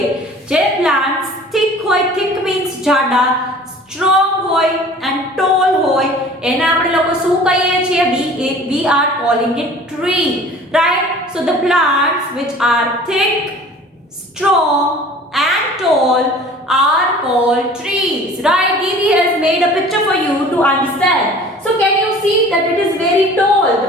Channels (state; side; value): normal; both; correlation 0.46